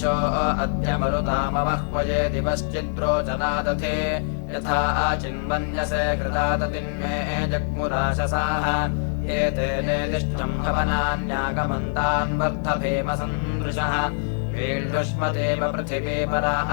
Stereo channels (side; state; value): right; silent; 63 dB below the other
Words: अद्य मरुतामवह्वये दिवश्चिद्रोचनादधि यथा चिन्मन्यसे हृदादतिन्मे जग्मुराशसाः ये तेनेदिष्टम् हवनान्यागमन्तान् वर्धभीमसन्दृशः वीढुष्मदेव पृथिवी